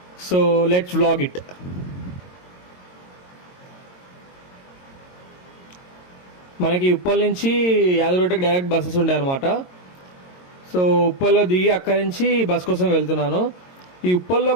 So let's vlog it. మనకి ఉప్పల్ నుంచి యాదగిరిగుట్టకి డైరెక్ట్ బస్సెస్ ఉంటాయి అన్నమాట. సో ఉప్పల్లో దిగి అక్కడి నుంచి బస్ కోసం వెళ్తున్నాను. ఈ ఉప్పల్లో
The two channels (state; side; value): late; right; 22 ms